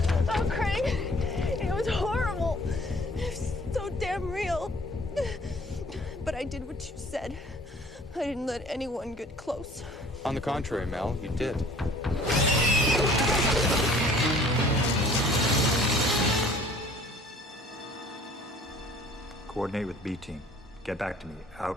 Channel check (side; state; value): both; normal; correlation 0.53